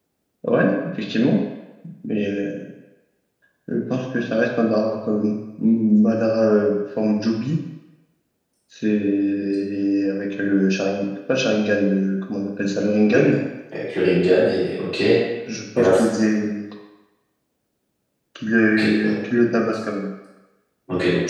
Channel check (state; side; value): identical; both; correlation 1.00